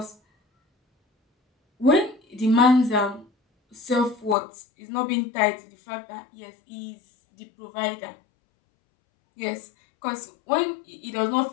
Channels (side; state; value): right; drops out; at 4.4 s